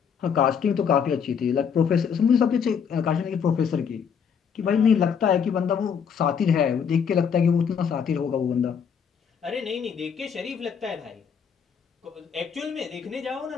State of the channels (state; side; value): quieter; right; 7.0 dB